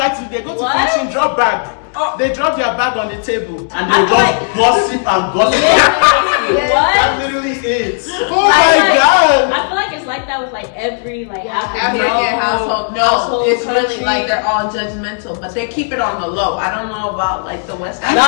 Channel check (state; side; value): silent; right; digital silence